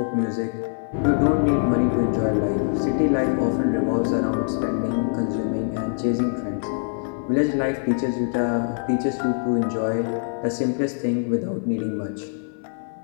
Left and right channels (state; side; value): silent; right; 57 dB below the other